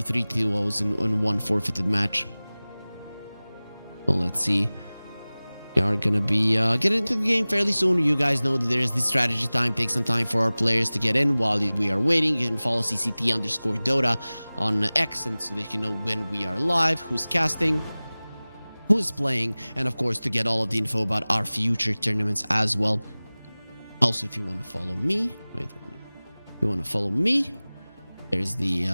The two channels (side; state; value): both; inverted; correlation -0.99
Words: 3 2-0s in one forfeited match. So let's see. We are going to be getting into the game fairly soon. You guys know that there is this strategy time. Take some time for our players to get in while we are waiting. You can follow CCT_Dota on X, and so they can know when we are live, who's casting, who's playing, and of course to get all of the info about our future tournaments as well. Also, if you want to follow me, if you want to follow me, there's